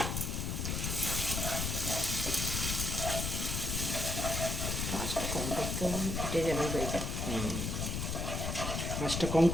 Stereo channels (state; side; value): noise; left; rumble, 1 dB below the sound